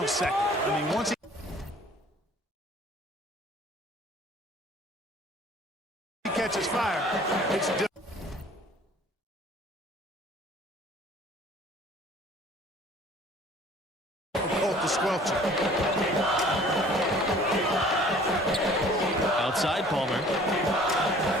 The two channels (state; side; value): normal; both; correlation 0.51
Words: I mean, once he catches fire, it's different. To squelch it.